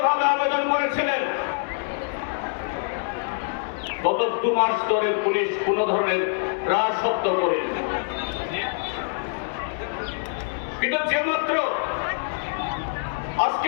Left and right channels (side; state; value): right; silent; digital silence